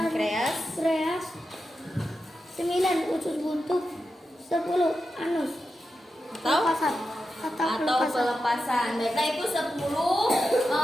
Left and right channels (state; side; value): normal; both; correlation 0.89